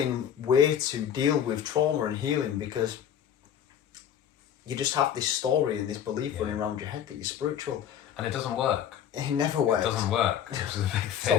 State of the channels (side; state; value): right; quieter; 9.4 dB